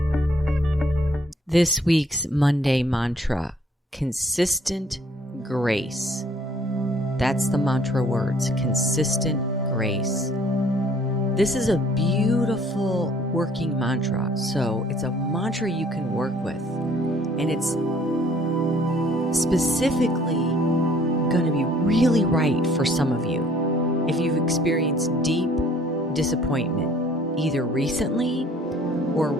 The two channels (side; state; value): both; normal; correlation 0.59